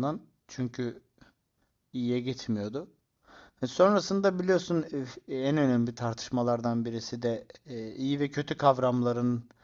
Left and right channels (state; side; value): identical; both; correlation 1.00